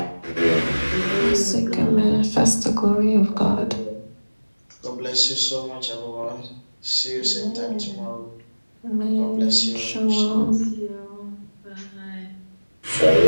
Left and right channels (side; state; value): both; inverted; correlation -1.00